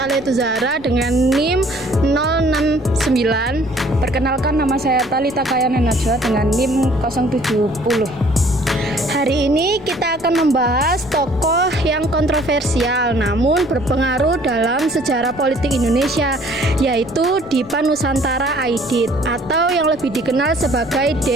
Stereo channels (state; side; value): noise; left; rumble, 22 dB below the sound